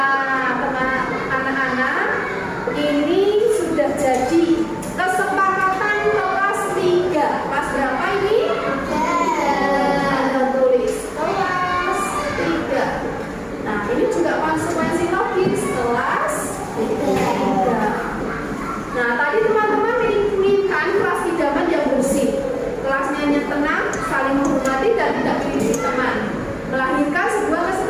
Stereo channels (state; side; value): identical; both; correlation 1.00